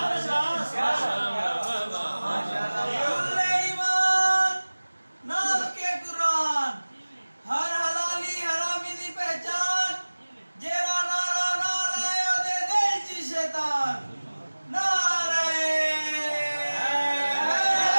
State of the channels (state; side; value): inverted; both; correlation -1.00